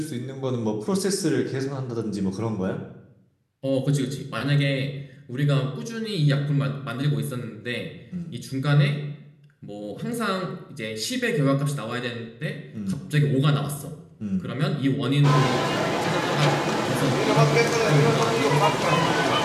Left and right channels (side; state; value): both; identical; correlation 1.00